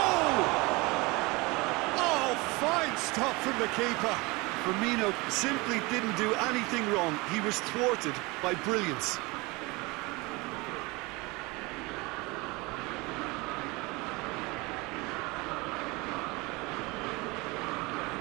Oh, fine stop from the keeper. Firmino simply didn't do anything wrong. He was thwarted by brilliance.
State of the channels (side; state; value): left; quieter; 24.7 dB